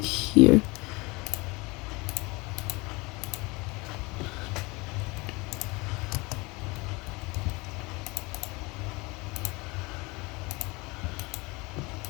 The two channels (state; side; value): quieter; right; 25.3 dB